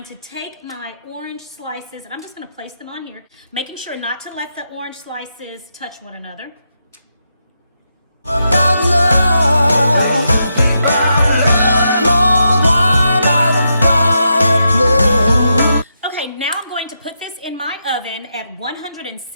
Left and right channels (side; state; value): both; inverted; correlation -0.84